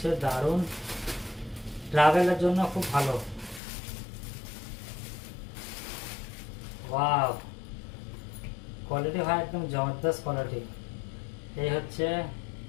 দারুণ, ট্রাভেলের জন্য খুব ভালো। ওয়াও, কোয়ালিটি ভাই একদম জবরদস্ত কোয়ালিটি। এই হচ্ছে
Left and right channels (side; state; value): right; drops out; at 3.6 s